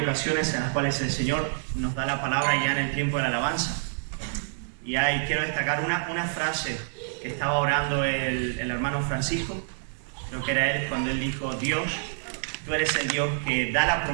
en las cuales el Señor nos da la palabra ya en el tiempo de la alabanza. Y quiero destacar una frase que estaba orando el hermano Francisco, creo que era él, cuando él dijo: Dios, tú eres el Dios que da la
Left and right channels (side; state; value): left; silent; digital silence